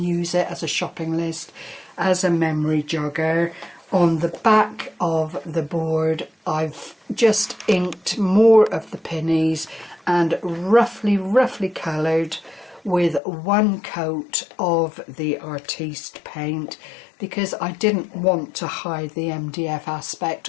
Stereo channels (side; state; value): right; drops out; at 13.2 s